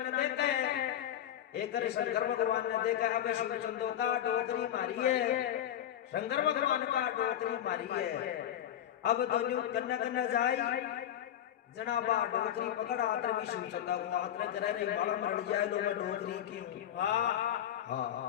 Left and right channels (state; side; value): quieter; right; 10.9 dB